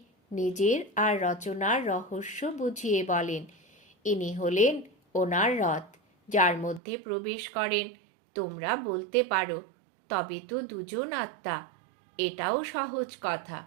নিজের আর রচনার রহস্য বুঝিয়ে বলেন। ইনি হলেন ওনার রথ, যার মধ্যে প্রবেশ করেন। তোমরা বলতে পারো, তবে তো দুজন আত্মা। এটাও সহজ কথা।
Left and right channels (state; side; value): drops out; left; at 6.8 s